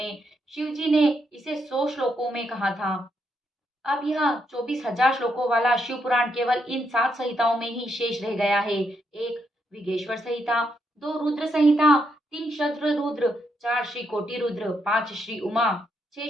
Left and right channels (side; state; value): both; normal; correlation 0.79